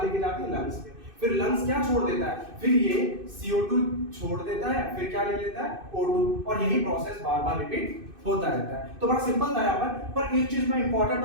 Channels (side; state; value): left; late; 2.6 ms